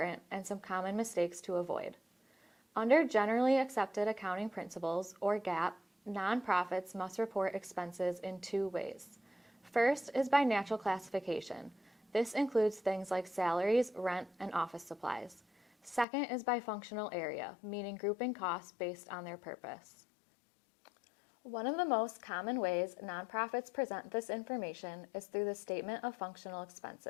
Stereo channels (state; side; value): drops out; right; at 16.1 s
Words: and some common mistakes to avoid. Under generally accepted accounting principles, or GAAP, nonprofits must report expenses in two ways. First is by natural classification. This includes things like salaries, rent, and office supplies. Second is by functional area, meaning grouping costs based on their purpose. One of the most common ways nonprofits present this information is through the statement of functional